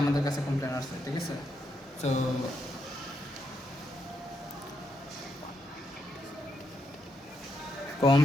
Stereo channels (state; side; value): normal; both; correlation 0.79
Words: কাছে কমপ্লেন আসছে। ঠিক আছে? তো